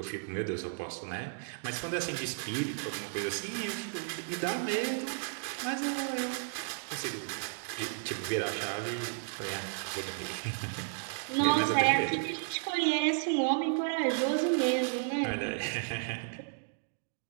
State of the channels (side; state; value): left; silent; digital silence